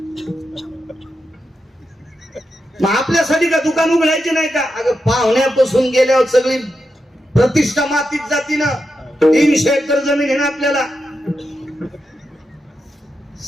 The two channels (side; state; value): both; normal; correlation 0.87